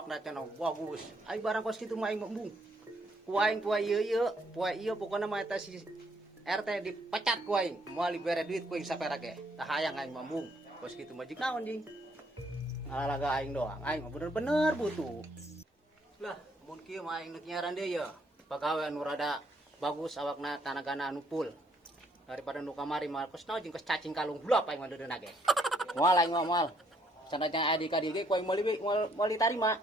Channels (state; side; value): normal; both; correlation 0.69